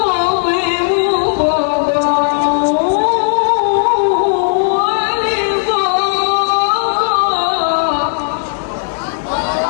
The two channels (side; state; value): right; silent; digital silence